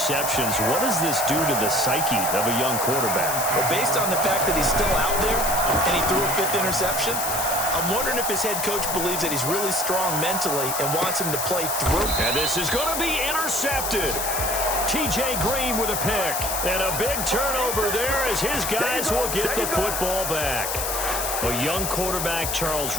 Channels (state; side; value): noise; left; hiss, 2 dB below the sound